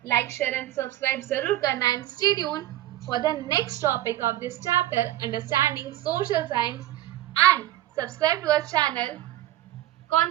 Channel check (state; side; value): quieter; left; 14.4 dB